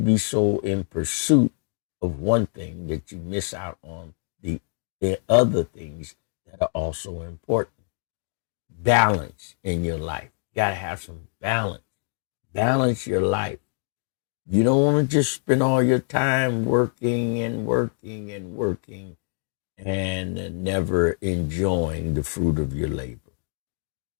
so in pursuit of one thing that you miss out on the other things that are also important. Balance in your life. You got to have some balance. Balance your life. You don't want to just spend all your time working and never enjoying the fruit of your labor.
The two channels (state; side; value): silent; right; digital silence